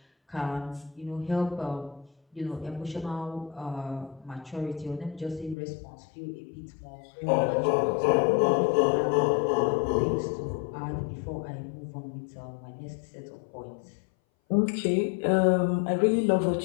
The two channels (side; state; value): right; drops out; at 5.6 s